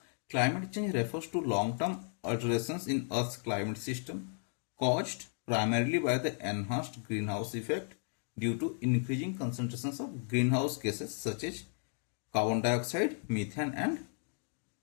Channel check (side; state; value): right; silent; 55 dB below the other